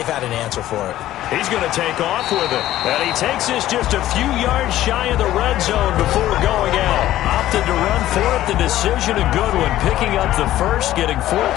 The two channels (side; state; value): right; quieter; 13.9 dB